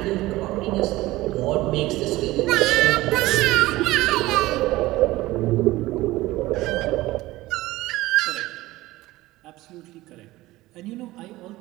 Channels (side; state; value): left; quieter; 18.1 dB